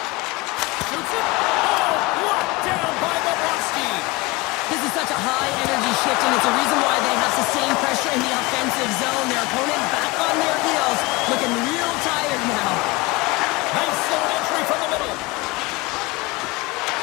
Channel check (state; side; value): quieter; right; 22.7 dB